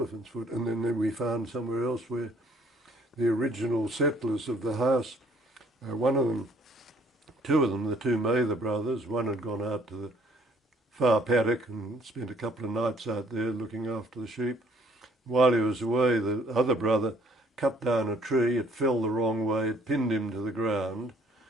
foot. And then we found somewhere else where the original settlers of the house, one of them, two of them, the two Mather brothers, one had gone out to the far paddock and spent a couple of nights out there looking after the sheep. While he was away, the other brother cut down a tree, it fell the wrong way, it pinned him to the ground.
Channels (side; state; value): both; normal; correlation 0.61